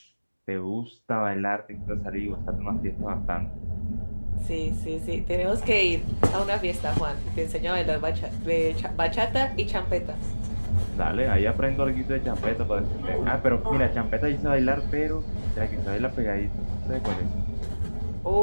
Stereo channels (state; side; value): inverted; both; correlation -1.00